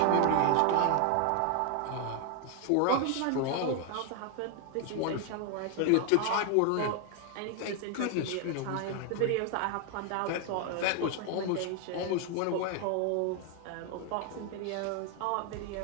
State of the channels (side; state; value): both; different; correlation 0.01